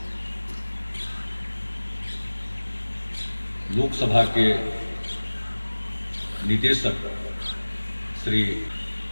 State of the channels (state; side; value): inverted; both; correlation -1.00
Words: लोकसभा के निदेशक श्री